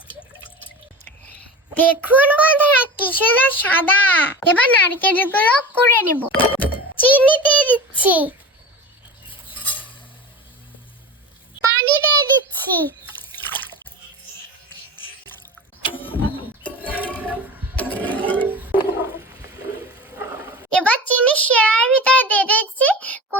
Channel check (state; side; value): normal; both; correlation 0.32